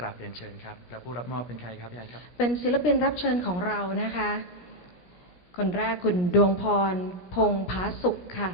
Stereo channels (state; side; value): late; right; 17 ms